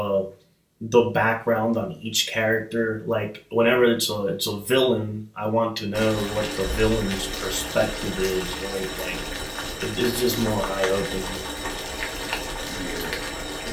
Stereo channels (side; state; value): both; identical; correlation 1.00